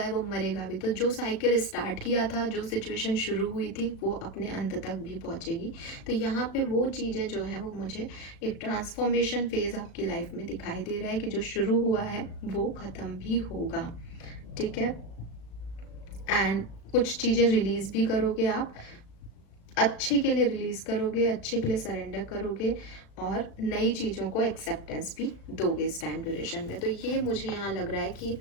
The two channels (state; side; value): late; right; 36 ms